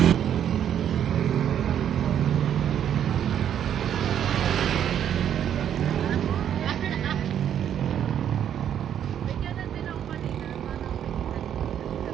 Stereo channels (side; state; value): left; quieter; 9.6 dB